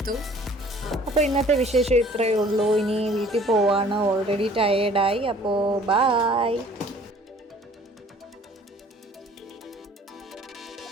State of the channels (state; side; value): normal; both; correlation 0.53